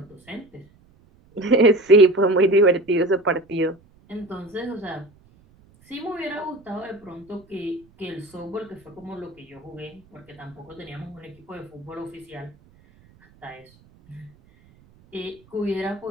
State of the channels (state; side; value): noise; right; rumble, 29 dB below the sound